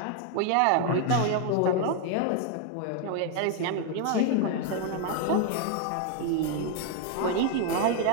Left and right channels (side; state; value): both; different; correlation 0.01